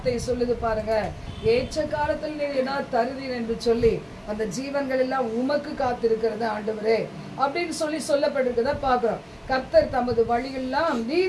சொல்லுது பாருங்க, ஏற்ற காலத்தில் நீ என்ன தருவீர் என்று சொல்லி அந்த ஜீவன்கள் எல்லாம் உமக்கு காத்திருக்கிறது ஆண்டவரே அப்படின்னு சொல்லப்பட்டிருக்கிறத பாக்குறோம். கர்த்தர் தமது வழியெல்லாம்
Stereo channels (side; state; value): both; identical; correlation 1.00